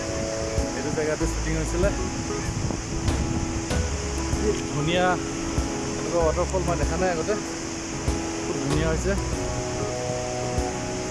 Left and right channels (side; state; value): both; identical; correlation 1.00